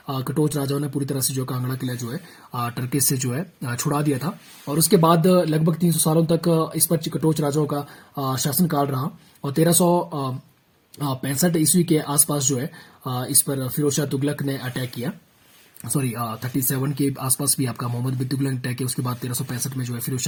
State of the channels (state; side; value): identical; both; correlation 1.00